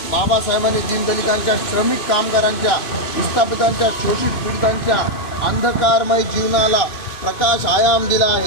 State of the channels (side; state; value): right; late; 2.5 ms